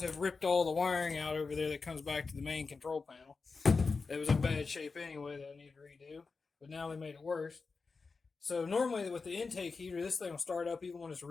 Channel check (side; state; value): right; quieter; 4.5 dB